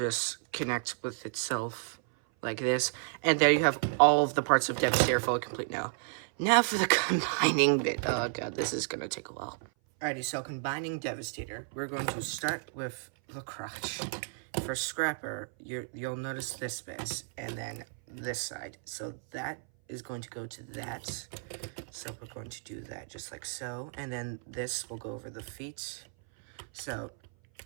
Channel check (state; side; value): silent; left; 56 dB below the other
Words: connect with itself like this. And there you have all of the parts of Devastator fully complete now. Now for the combining bit. Oh god, this is gonna take a while. Alrighty, so combining Devastator, we're going to start with the crotch. For Scrapper, you'll notice this bit, and then this side. So that is going to go to that. So we're going to do that just like so. And then this will go over the feet. So